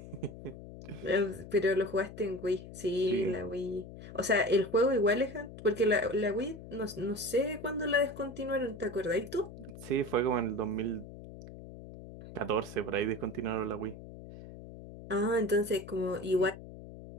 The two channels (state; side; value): noise; left; hum, 14 dB below the sound